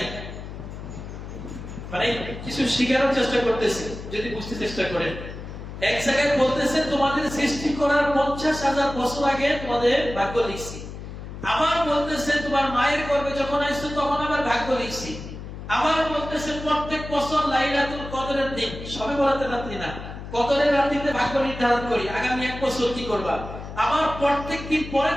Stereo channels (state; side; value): noise; left; hum, 10 dB below the sound